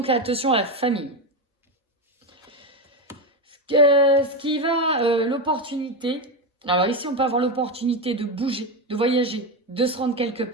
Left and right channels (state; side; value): normal; both; correlation 0.13